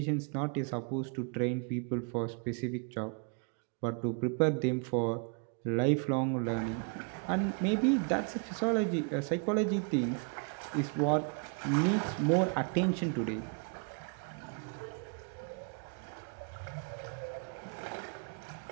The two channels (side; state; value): left; quieter; 38.3 dB